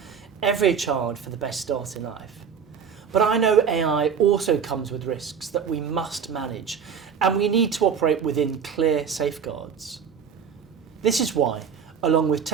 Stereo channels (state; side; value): quieter; left; 7.0 dB